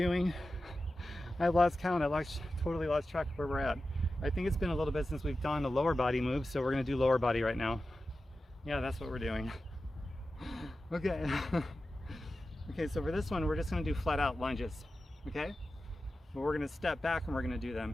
I lost count. Totally lost track of where we're at. I think it's been a little bit since we've done a lower body move, so we're gonna do lower body right now. Yeah, that's what we're doing. Okay. Okay, so for this one, we're just gonna do flat out lunges, okay? But we're gonna step back and we're gonna do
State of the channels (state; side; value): normal; both; correlation 0.93